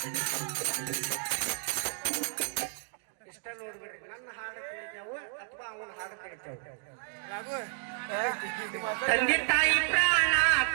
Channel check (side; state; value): left; silent; 57 dB below the other